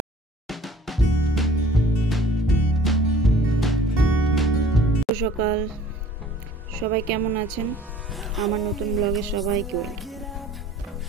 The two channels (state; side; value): normal; both; correlation 0.51